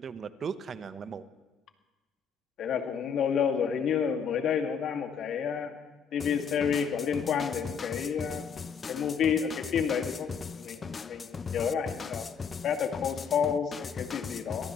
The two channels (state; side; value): quieter; right; 6.5 dB